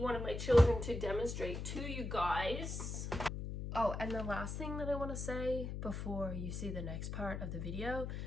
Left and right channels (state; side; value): noise; left; hum, 5 dB below the sound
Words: of my children to demonstrate to you guys. Oh, and the last thing that I want to say before you see the next part of the video,